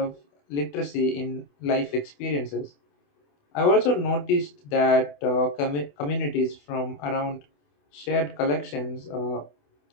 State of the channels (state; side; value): late; right; 28 ms